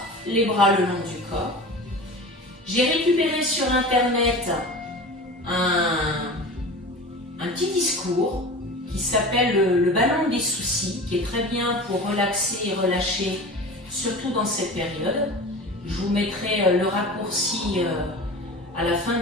les bras le long du corps. J'ai récupéré sur Internet un petit discours qui s'appelle le ballon des soucis, qui est très bien pour relaxer et relâcher, surtout dans cette période. Je vous mettrai le raccourci à la fin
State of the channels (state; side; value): normal; both; correlation 0.34